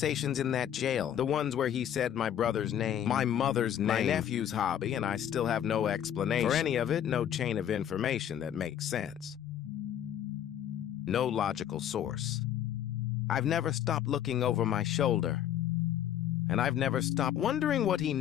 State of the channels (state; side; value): quieter; right; 10.2 dB